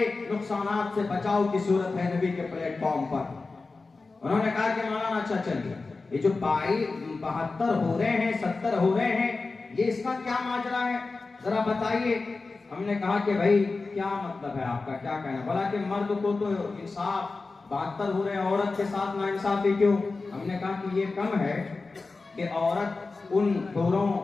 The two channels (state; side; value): quieter; right; 3.8 dB